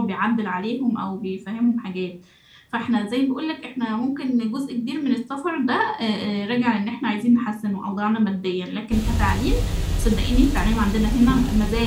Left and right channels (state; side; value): identical; both; correlation 1.00